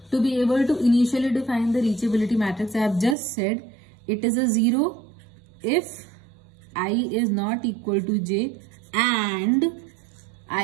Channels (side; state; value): left; drops out; at 3.2 s